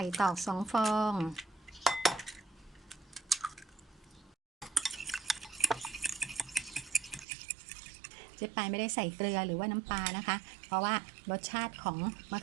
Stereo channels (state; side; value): drops out; left; at 7.2 s